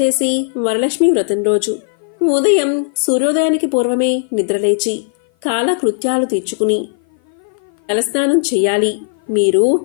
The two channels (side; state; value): right; silent; 56 dB below the other